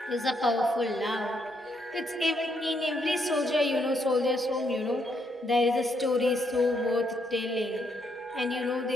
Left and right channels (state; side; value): normal; both; correlation 0.75